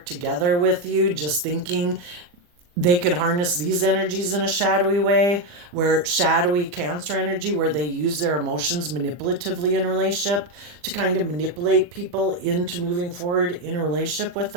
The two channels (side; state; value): left; late; 40 ms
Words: together with you, just thinking they could harness these energies in a shadowy way, where shadowy Cancer energy, where they use their emotions manipulatively in a relationship to kind of manipulate people into moving forward in a relationship with